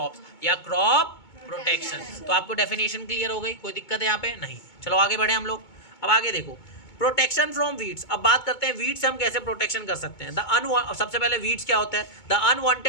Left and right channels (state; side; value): late; right; 2.2 ms